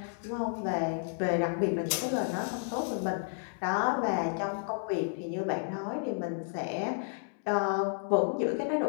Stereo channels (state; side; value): silent; right; digital silence